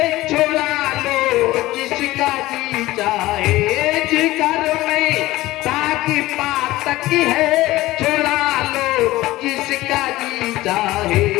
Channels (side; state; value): right; quieter; 17.7 dB